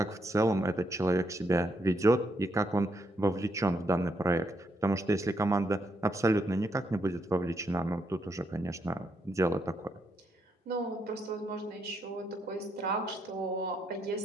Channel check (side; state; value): both; normal; correlation 0.78